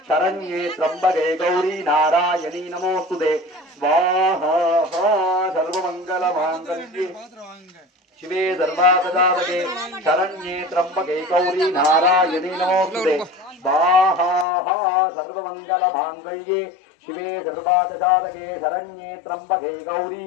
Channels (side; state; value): right; drops out; at 14.5 s